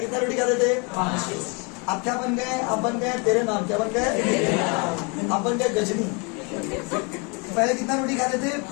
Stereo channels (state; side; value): quieter; right; 31.4 dB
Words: रोटी खाते थे? 5। आप क्या बन गए? आप बन गए तेरे नाम। क्या बन गए? आप बन गए गजनी। पहले कितना रोटी खाते थे?